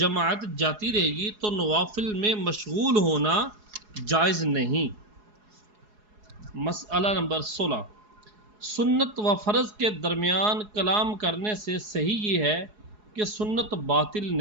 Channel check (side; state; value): left; late; 4.8 ms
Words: جاتی رہے گی تو نوافل میں مشغول ہونا جائز نہیں۔ مسئلہ نمبر 16، سنت و فرض کے درمیان کلام کرنے سے صحیح یہ ہے کہ سنت باطل